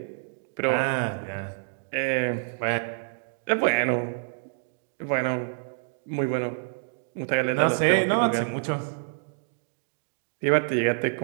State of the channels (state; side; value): silent; left; digital silence